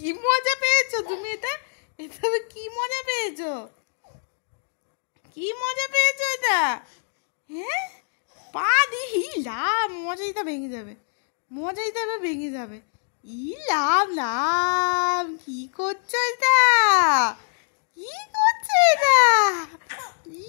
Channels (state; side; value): silent; right; digital silence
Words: মজা পেয়েছো তুমি? এটা এটা কি মজা পেয়েছো? কি মজা পেয়েছো এটা? হ্যাঁ, পা দিয়ে ইলাম, মজাইটা ভেঙে যাবে, মজাইটা এবার ভেঙে যাবে। ইলাম লাম, কি করছো এটা? কি করছো এটা?